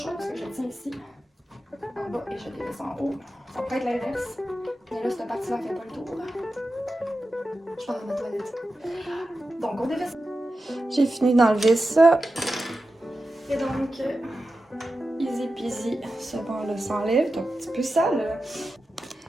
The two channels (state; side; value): normal; both; correlation 0.92